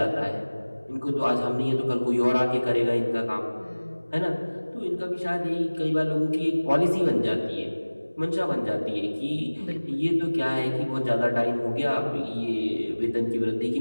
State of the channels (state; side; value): inverted; both; correlation -1.00